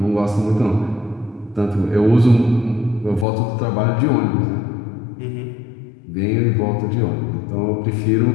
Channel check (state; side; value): drops out; right; at 3.2 s